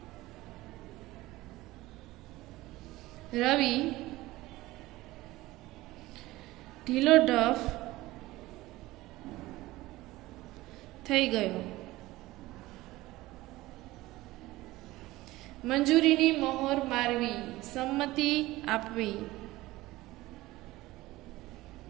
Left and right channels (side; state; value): left; quieter; 18.3 dB